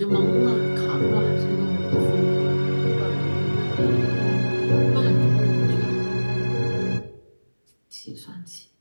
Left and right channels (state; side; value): inverted; both; correlation -1.00